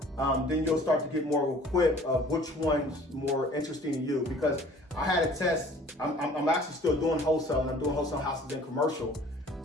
Then you'll start to get more equipped of which one's more interesting to you. Because I had a test. I'm actually still doing wholesale, and I'm doing wholesale houses and commercial.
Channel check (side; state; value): both; normal; correlation 0.51